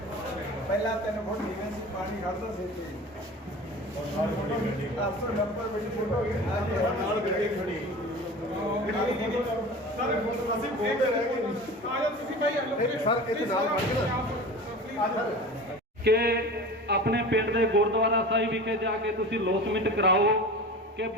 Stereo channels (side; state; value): both; normal; correlation 0.35